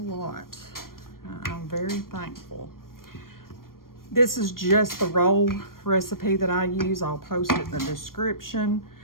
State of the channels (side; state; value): right; late; 0.92 ms